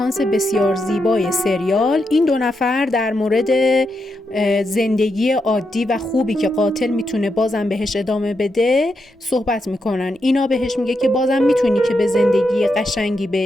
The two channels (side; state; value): both; normal; correlation 0.84